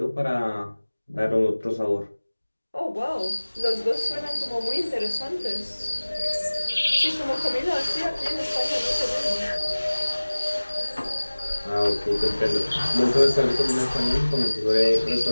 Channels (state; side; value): inverted; both; correlation -1.00